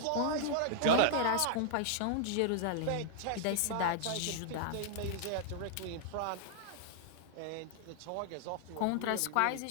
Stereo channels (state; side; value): different; both; correlation -0.01